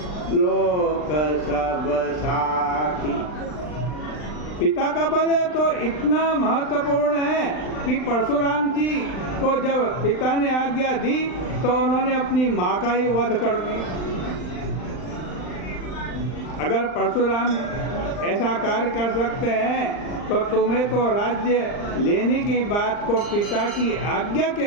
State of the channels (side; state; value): right; late; 39 ms